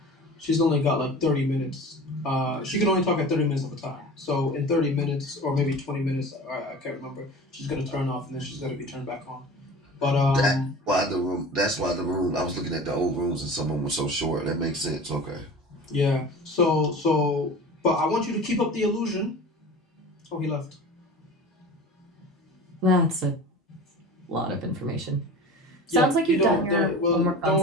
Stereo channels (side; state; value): both; normal; correlation 0.37